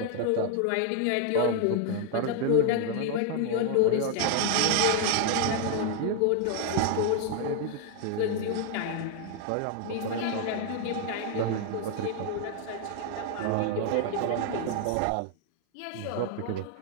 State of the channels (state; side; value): different; both; correlation 0.00